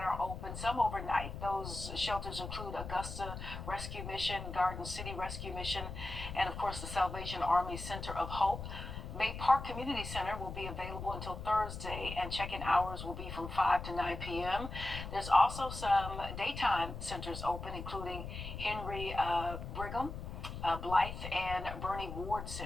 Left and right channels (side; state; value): left; noise; rumble, 8 dB below the sound